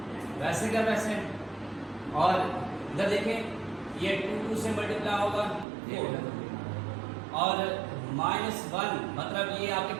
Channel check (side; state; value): left; drops out; at 5.7 s